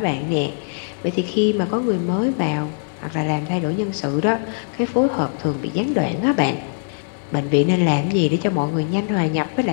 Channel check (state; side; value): silent; right; digital silence